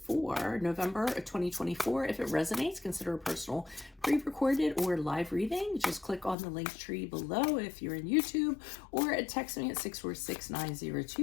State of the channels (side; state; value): right; drops out; at 6.4 s